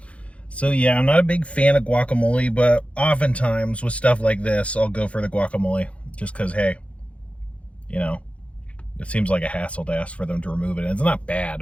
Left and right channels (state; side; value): late; right; 0.063 ms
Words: So yeah, I'm not a big fan of guacamole, but oftentimes with stuff like this, I'll go for the guacamole just because, hey, you know, it seems like a hassle to ask for them to remove it, and it's not